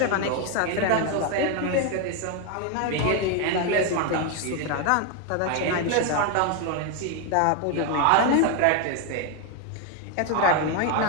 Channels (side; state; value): both; different; correlation 0.01